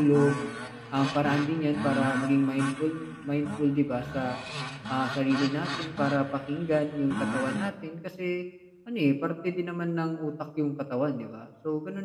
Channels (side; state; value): both; identical; correlation 1.00